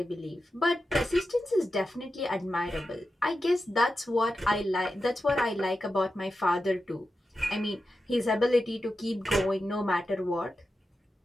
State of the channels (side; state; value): both; normal; correlation 0.91